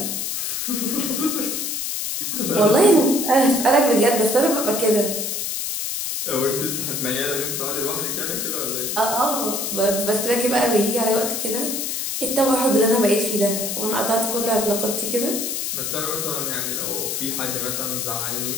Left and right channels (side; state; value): left; noise; hiss, 2 dB below the sound